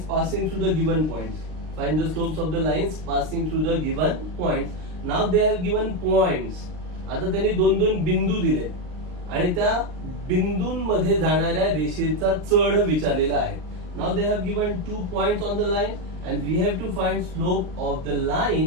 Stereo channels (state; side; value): late; left; 38 ms